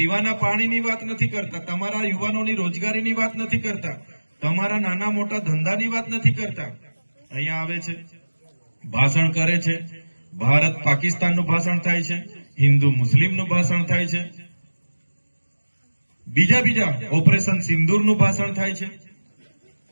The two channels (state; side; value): inverted; both; correlation -1.00